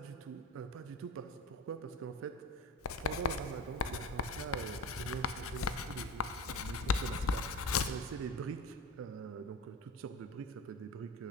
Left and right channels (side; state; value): both; normal; correlation 0.31